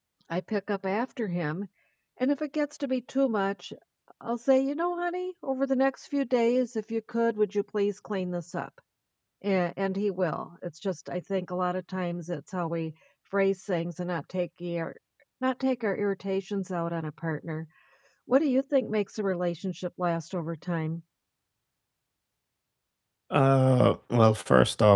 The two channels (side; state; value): both; identical; correlation 1.00